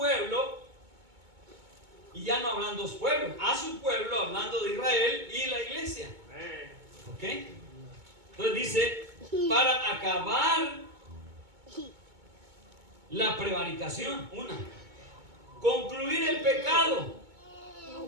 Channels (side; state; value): left; late; 2.2 ms